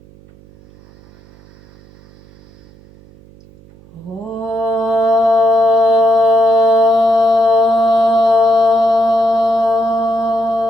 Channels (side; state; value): right; noise; hum, 26 dB below the sound